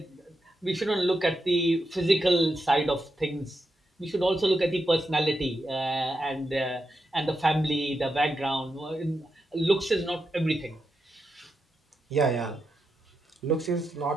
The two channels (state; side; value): normal; both; correlation 0.86